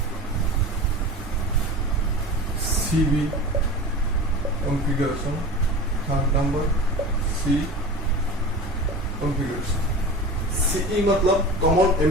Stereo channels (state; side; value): normal; both; correlation 0.33